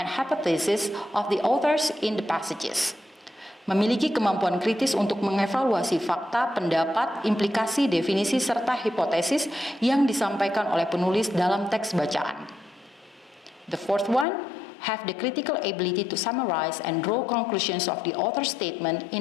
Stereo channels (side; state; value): right; drops out; at 14.2 s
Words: hypotheses of the authors in the passages. Memiliki kemampuan kritis untuk mengevaluasi fakta, pendapat, implikasi, definisi, serta hipotesis yang disampaikan oleh penulis dalam teks bacaan. The fourth one, have the critical ability to summarize and draw conclusions of the author's statement